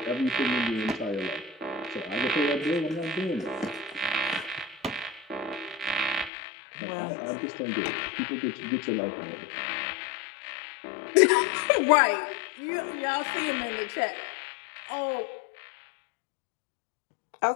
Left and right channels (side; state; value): right; drops out; at 6.3 s